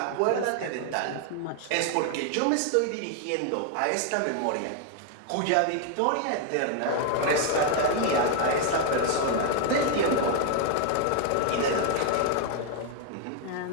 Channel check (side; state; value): both; different; correlation 0.00